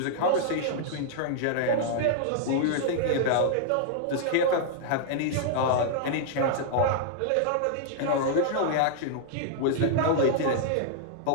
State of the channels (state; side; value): different; both; correlation -0.01